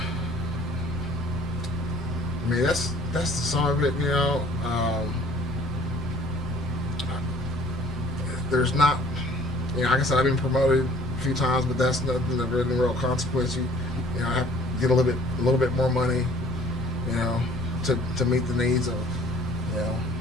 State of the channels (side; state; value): both; normal; correlation 0.54